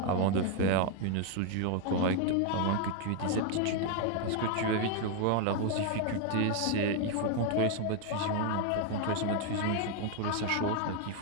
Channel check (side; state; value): both; different; correlation 0.01